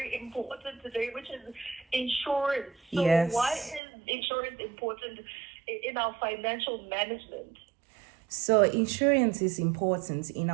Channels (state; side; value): drops out; left; at 3.8 s